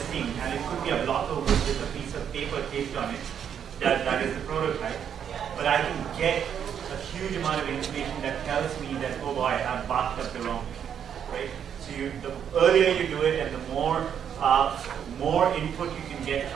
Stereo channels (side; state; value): left; quieter; 8.5 dB